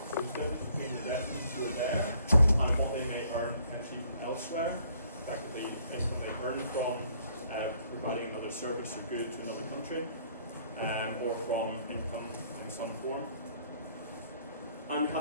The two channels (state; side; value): inverted; both; correlation -0.64